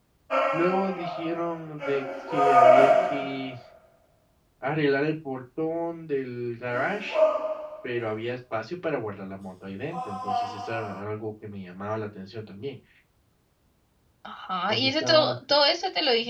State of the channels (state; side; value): identical; both; correlation 1.00